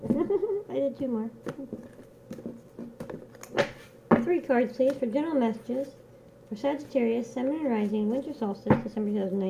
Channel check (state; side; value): identical; both; correlation 1.00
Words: I did two more. 3 cards, please, for general messages for Sagittarius, Sun and Rising, Winter Solstice, December